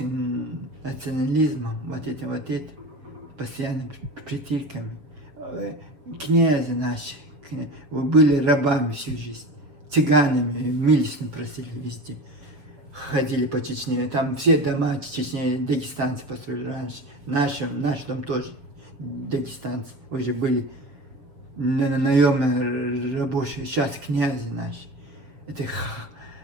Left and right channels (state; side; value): late; left; 6.7 ms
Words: национализмом, вот этим, постоянно притирками, князья наши, вы были рабами всю жизнь, цыганами, милостно просили везде. Ходили по Чечне, там все дома Чечне, дагестанцы построили раньше. Наш дом тоже дагестанцы, уже были наемные рабочие, сейчас князи наши. Это